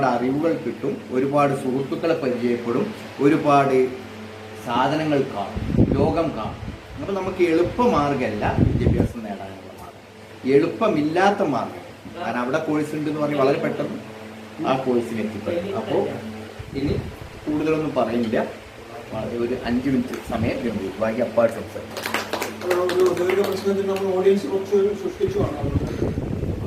അറിവുകൾ കിട്ടും, ഒരുപാട് സുഹൃത്തുക്കളെ പരിചയപ്പെടും, ഒരുപാട് സാധനങ്ങൾ കാണും, ലോകം കാണും. അപ്പം നമുക്ക് എളുപ്പമാർഗമല്ല വിദ്യാഭ്യാസം നേടാനുള്ള മാർഗം, എളുപ്പമില്ലാത്ത മാർഗം. കാരണം അവിടെ കോഴ്സ് ഉണ്ട് എന്ന് പറഞ്ഞ് വളരെ പെട്ടെന്ന് ആ കോഴ്സിന് എത്തിപ്പെടും. അപ്പോൾ ഇനി കൂടുതലൊന്നും പറയുന്നില്ല, ഒരു 5 മിനിറ്റ് സമയം വേണ്ടി ബാക്കി അപ്പാട് സംസാരിക്കും. പ്രശ്നത്തിൽ നമ്മൾ ഓഡിയൻസ് കുറച്ച് സൃഷ്ടിച്ചുമാണ്.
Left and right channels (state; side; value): identical; both; correlation 1.00